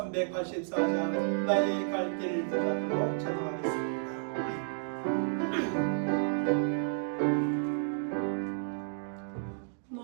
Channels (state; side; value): silent; left; digital silence